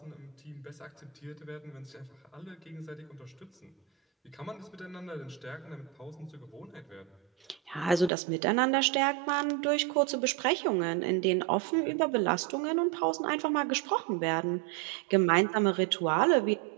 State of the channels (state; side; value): drops out; left; at 8.1 s